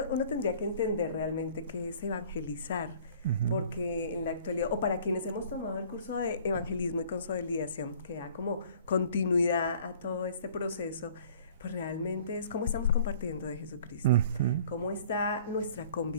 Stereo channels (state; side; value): inverted; both; correlation -0.51